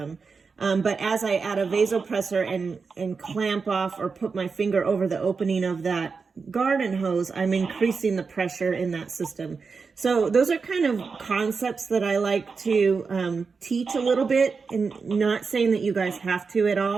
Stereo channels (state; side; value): quieter; left; 5.0 dB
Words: But as I add a vasopressor and clamp off or put my finger over the opening of that garden hose, I'm increasing the pressure in that system. So those are kind of concepts that I like to teach a little bit, and not saying that you guys have to at